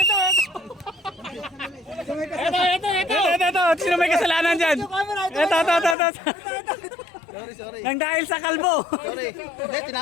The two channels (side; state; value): right; drops out; at 6.0 s